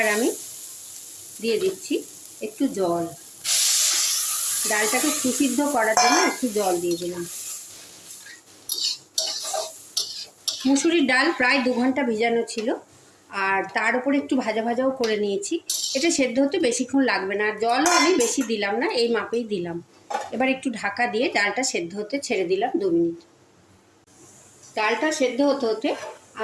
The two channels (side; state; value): both; identical; correlation 1.00